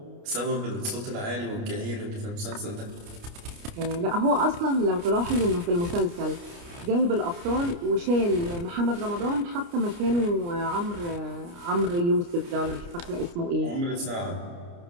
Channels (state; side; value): late; left; 29 ms